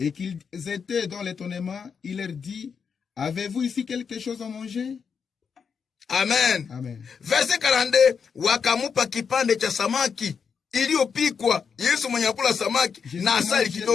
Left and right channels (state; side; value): quieter; right; 6.3 dB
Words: qu'ils étaient dans l'étonnement, il leur dit, avez-vous ici quelque chose à manger? Amen. Amen. Verse 42, wakamupa kipande cha samaki iliyopikwa. Yesu mwenye akula samaki na asali